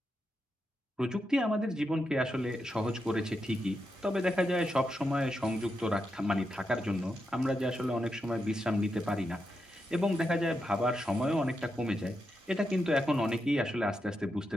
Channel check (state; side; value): normal; both; correlation 0.85